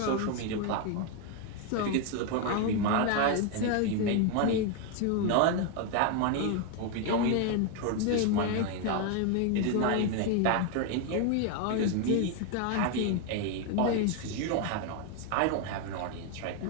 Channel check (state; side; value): different; both; correlation 0.01